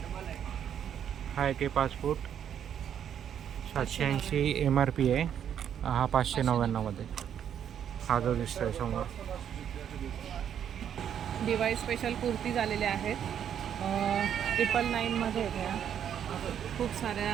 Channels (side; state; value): left; quieter; 9.1 dB